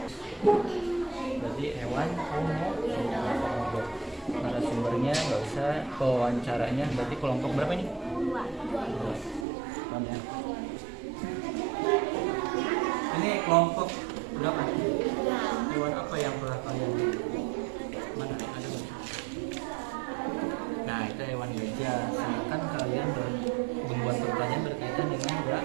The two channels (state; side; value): drops out; left; at 9.5 s